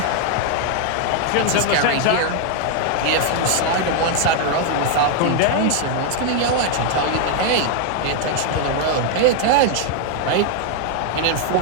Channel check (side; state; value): both; different; correlation 0.00